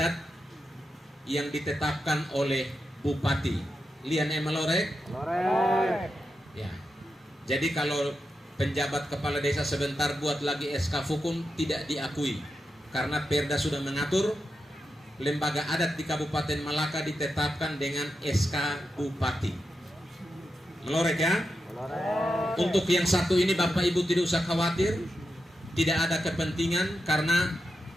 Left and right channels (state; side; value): normal; both; correlation 0.87